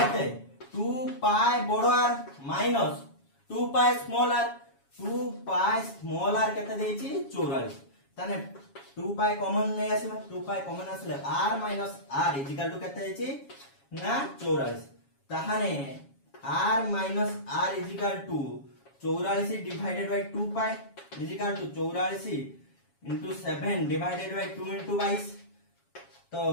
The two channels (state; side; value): late; right; 7.2 ms